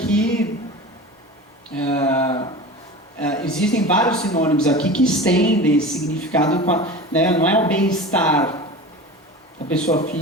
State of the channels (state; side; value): normal; both; correlation 0.33